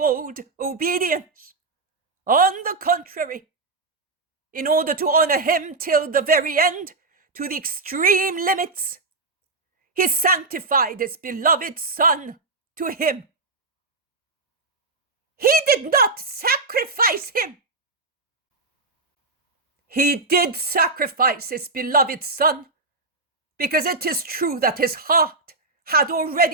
obedience. On the contrary, in order to honor him till the very end, to the extreme limits, he sanctified his beloved son to him. He did not sacrifice him. He did sacrifice his beloved son, because it is true that his heart had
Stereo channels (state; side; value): quieter; left; 3.6 dB